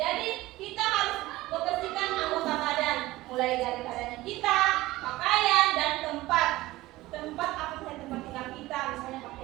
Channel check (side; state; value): left; quieter; 18.1 dB